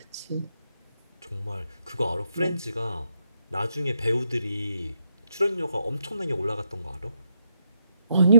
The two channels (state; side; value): inverted; both; correlation -0.79